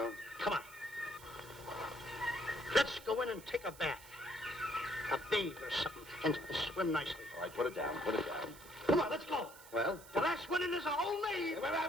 Come on. Let's go in and take a bath. A bathe or something, and swim nicely. All right, put it down. Come on, let's go. Well? The last one in is a whole name. Wait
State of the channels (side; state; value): right; noise; hiss, 18 dB below the sound